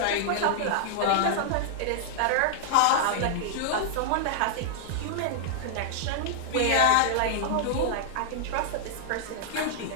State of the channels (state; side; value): different; both; correlation -0.01